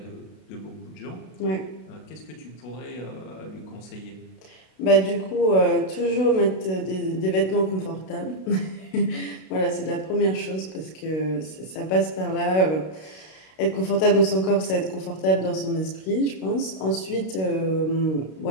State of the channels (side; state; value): right; late; 32 ms